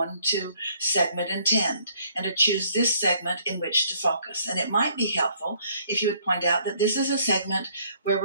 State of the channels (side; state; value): both; inverted; correlation -0.64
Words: to segment and tend and to choose this segment in which to focus. And it might be helpful if you would point out that this is a segment where